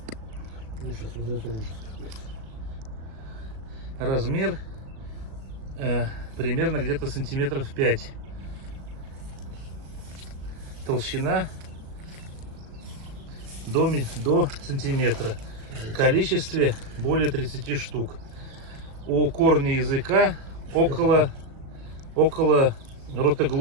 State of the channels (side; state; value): left; late; 37 ms